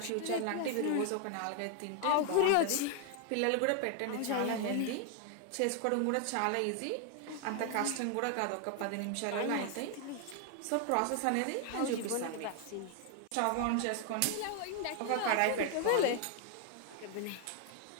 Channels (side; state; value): both; different; correlation 0.00